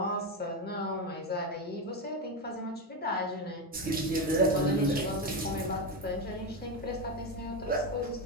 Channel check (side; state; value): both; normal; correlation 0.12